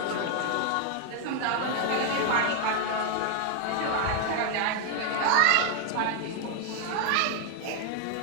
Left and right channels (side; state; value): both; different; correlation 0.00